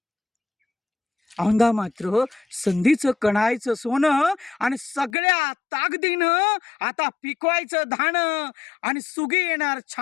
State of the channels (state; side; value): drops out; right; at 5.1 s